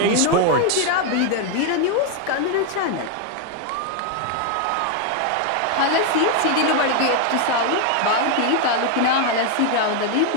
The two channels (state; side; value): different; both; correlation 0.01